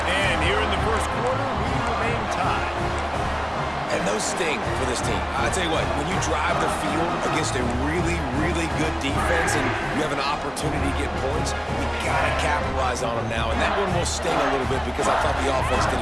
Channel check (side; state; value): both; identical; correlation 1.00